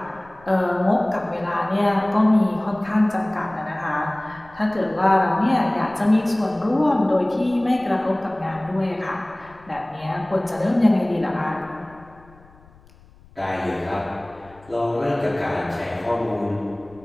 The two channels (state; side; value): noise; left; rumble, 26 dB below the sound